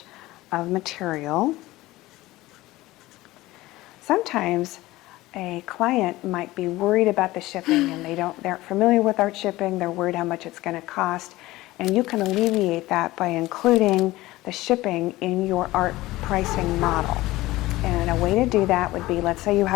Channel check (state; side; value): quieter; right; 18.2 dB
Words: of material. Sometimes a client might be worried about the shipping and they aren't familiar with art shipping, they're worried how much it's going to cost, and you can alleviate that by including the shipping in your art pricing model. And a way to do that would be, let's say you